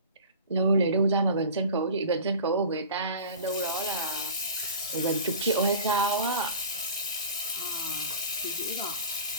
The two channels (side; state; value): both; inverted; correlation -0.38